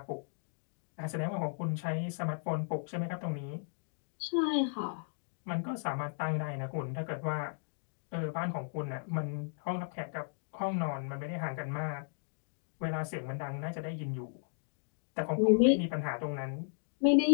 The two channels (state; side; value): silent; right; digital silence